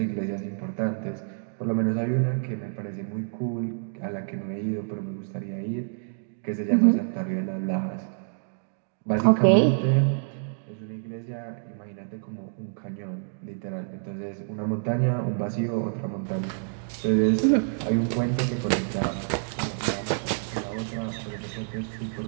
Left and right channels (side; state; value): left; silent; digital silence